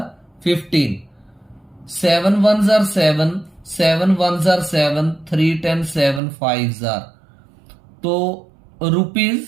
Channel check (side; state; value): left; drops out; at 6.2 s